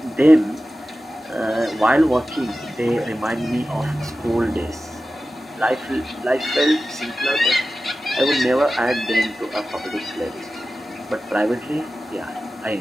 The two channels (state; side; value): normal; both; correlation 0.94